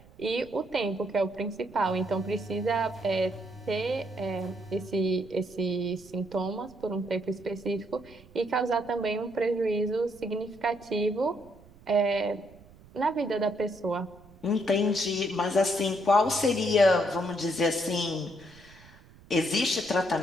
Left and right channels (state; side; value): noise; right; rumble, 24 dB below the sound